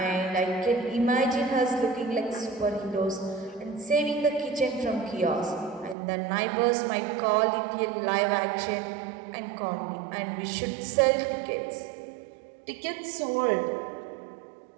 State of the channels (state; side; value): drops out; left; at 6.0 s